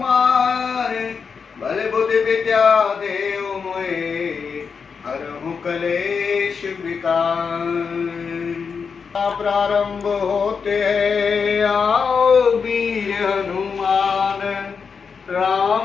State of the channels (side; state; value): right; quieter; 5.8 dB